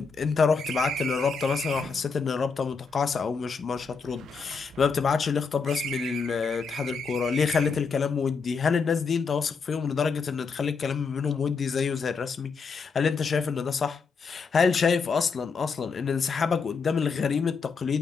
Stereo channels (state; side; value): quieter; right; 5.1 dB